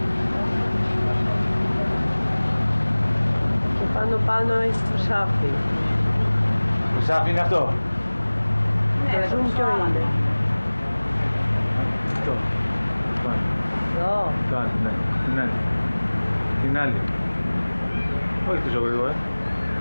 Και πάνω έχει το σάφι. Το σάφι είναι αυτό. Το zoom ποιο είναι? Αυτό. Εδώ. Το άλλο, ναι. Την άλλη. Την άλλη. Όχι τόσο γρήγορα.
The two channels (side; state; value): both; inverted; correlation -1.00